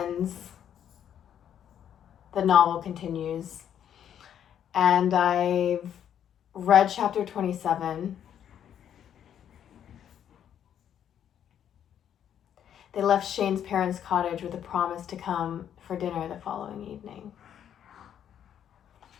the novel continues. And I've read chapter 27. They left Shane's parents' cottage with a promise to come for dinner the following evening.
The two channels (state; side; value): quieter; right; 9.6 dB